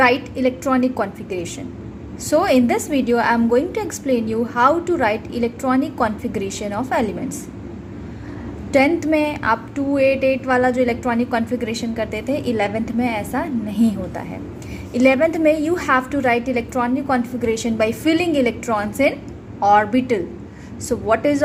electronic configuration. So in this video, I am going to explain you how to write electronic configuration of elements. 10th में आप 288 वाला जो electronic configuration करते थे, 11th में ऐसा नहीं होता है. 11th में you have to write electronic configuration by filling electrons in orbital. So what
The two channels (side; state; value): both; identical; correlation 1.00